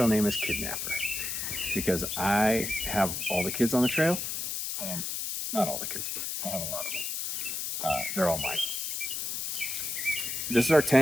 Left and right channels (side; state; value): left; noise; hiss, 3 dB below the sound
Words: name is Kidnapper because I have all the kids on the trail. Not all the kids, but I have a lot of them. They're all mine. This is our